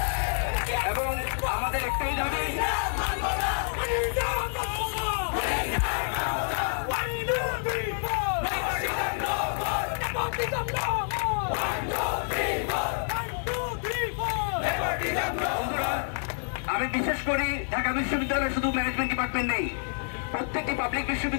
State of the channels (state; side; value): silent; right; 59 dB below the other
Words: এবং আমাদের একটাই দাবি, আমি বিশেষ করি ঢাকা বিশ্ববিদ্যালয়ে শুধু ম্যানেজমেন্ট ডিপার্টমেন্ট নেই, প্রত্যেকটি পাবলিক